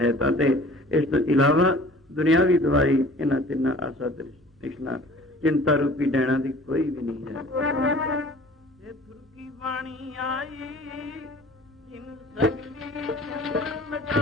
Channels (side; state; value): both; normal; correlation 0.47